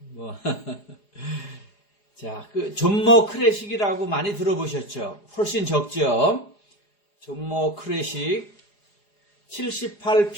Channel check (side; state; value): right; late; 4.9 ms